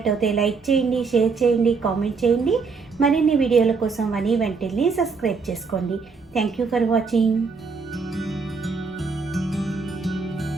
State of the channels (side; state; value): left; quieter; 4.8 dB